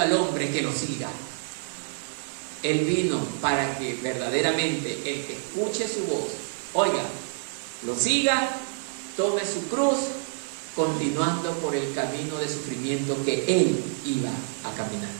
al hombre que lo siga. Él vino para que verdaderamente el que escuche su voz, oiga, lo siga, tome su cruz, continuando por el camino de sufrimiento que Él iba a caminar.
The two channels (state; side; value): silent; left; digital silence